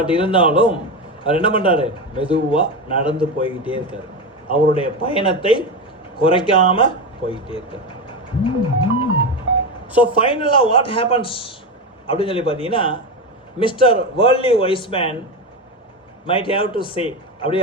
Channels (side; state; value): both; normal; correlation 0.17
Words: இருந்தாலும் அவர் என்ன பண்ணுறாரு, மெதுவாக நடந்து போய்கிட்டே இருக்கார். அவருடைய பயணத்தை குறைக்காமல் போய்கிட்டே இருக்கார். ஸோ ஃபைனலாக வாட் ஹேப்பன்ஸ் அப்படின்னு சொல்லி பார்த்தீங்கன்னா, mister worldly Wiseman might have to say, அப்படியே